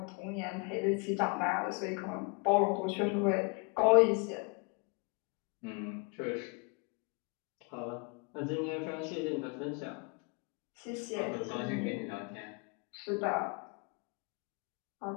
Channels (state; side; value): quieter; right; 33.5 dB